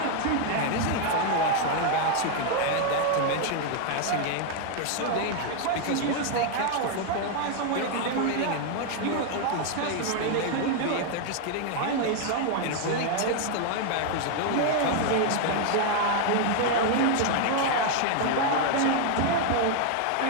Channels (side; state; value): both; different; correlation 0.00